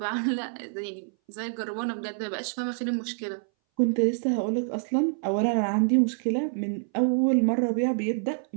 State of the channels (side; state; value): left; silent; 59 dB below the other